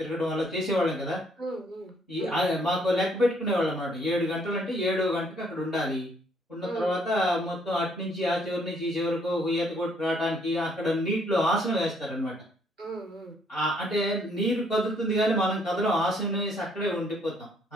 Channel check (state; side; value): normal; both; correlation 0.67